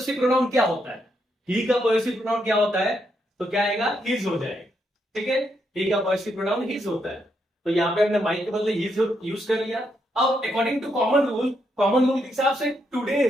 प्रोनाउन क्या होता है, ही का पॉजिटिव प्रोनाउन क्या होता है, तो क्या आएगा, हिज हो जाएगा, ठीक है। ही का पॉजिटिव प्रोनाउन हिज होता है, तो यहाँ पे हमने माई के बदले हिज यूज कर लिया। अब अकॉर्डिंग टू कॉमन रूल के हिसाब से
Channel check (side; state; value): both; normal; correlation 0.79